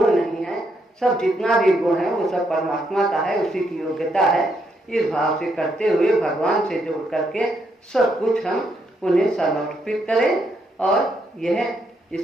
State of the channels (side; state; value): both; normal; correlation 0.76